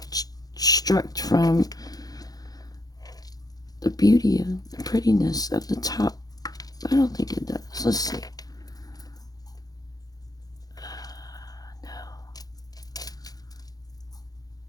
obstruct from the beauty and the prettiness of the top. I don't think it does. Let's see. No.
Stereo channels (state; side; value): late; right; 0.18 ms